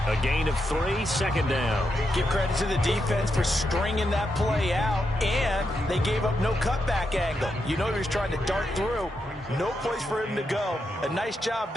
A gain of 3, 2nd down. Give credit to the defense for stringing that play out, and they gave up no cutback angle. You know he was trying to dart through. No place for him to go. A nice job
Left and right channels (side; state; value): both; normal; correlation 0.84